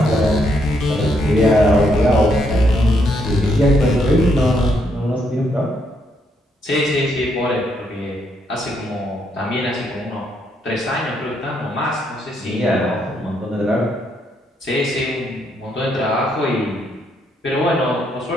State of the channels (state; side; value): normal; both; correlation 0.75